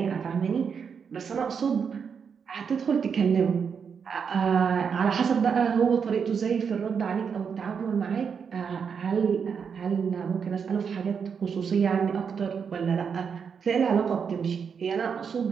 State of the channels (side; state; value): left; quieter; 6.5 dB